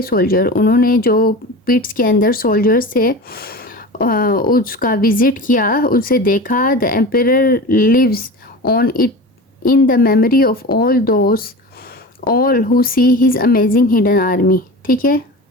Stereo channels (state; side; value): normal; both; correlation 0.32